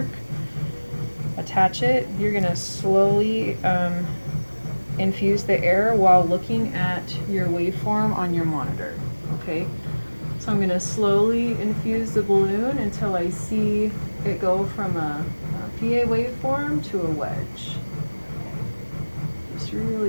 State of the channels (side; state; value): both; inverted; correlation -1.00